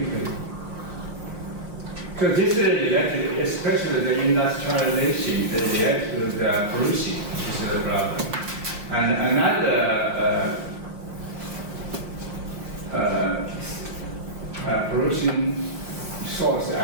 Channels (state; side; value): late; left; 5.6 ms